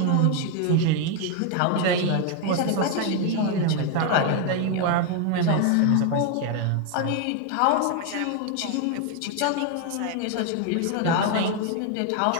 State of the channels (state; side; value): different; both; correlation 0.01